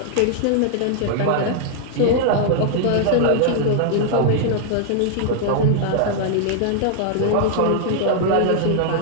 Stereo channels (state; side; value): different; both; correlation -0.01